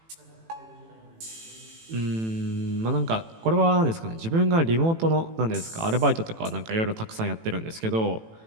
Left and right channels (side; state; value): left; late; 18 ms